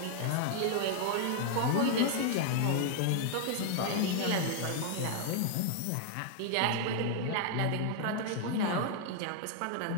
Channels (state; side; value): different; both; correlation 0.00